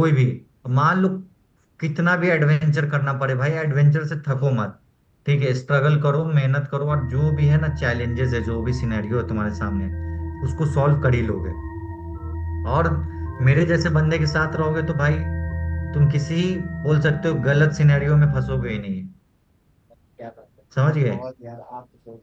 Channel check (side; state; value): both; identical; correlation 1.00